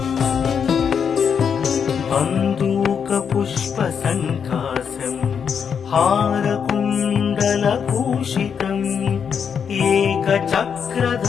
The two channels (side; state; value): right; quieter; 7.0 dB